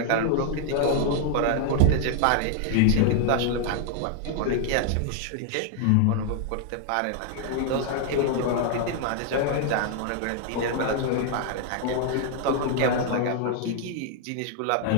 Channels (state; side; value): different; both; correlation 0.00